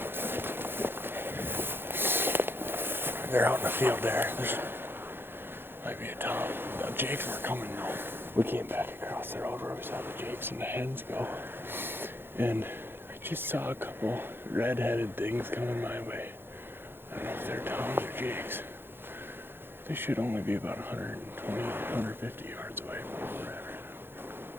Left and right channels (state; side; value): late; left; 0.10 ms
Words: They're out in the field there. There's might be a tom. The jakes were coming though. We came back across the road where we saw the jakes and the hens go. And I just saw a couple red-headed things coming my way. I don't know if they're toms or jakes. They should only be about 120, 150 yards away from where we're at right now.